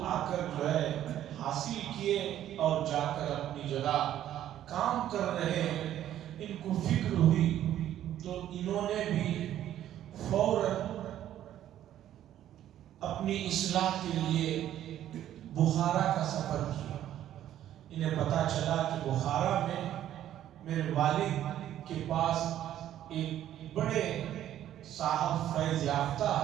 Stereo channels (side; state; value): left; quieter; 11.8 dB